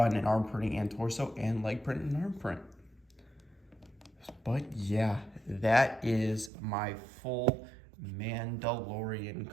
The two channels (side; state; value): left; drops out; at 6.5 s